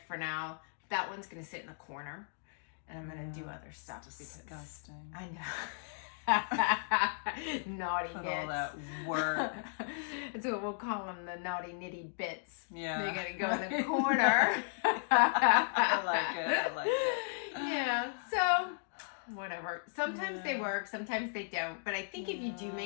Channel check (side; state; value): right; silent; digital silence